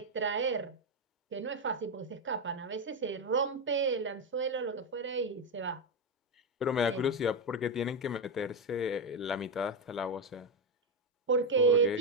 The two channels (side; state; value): both; normal; correlation 0.07